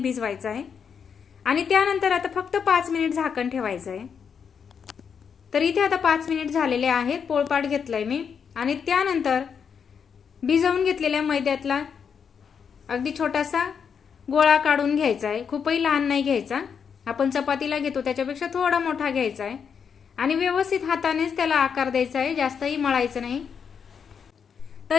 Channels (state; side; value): quieter; right; 6.8 dB